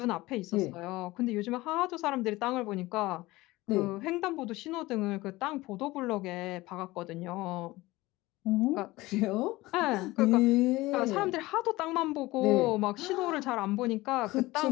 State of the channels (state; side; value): quieter; right; 19.5 dB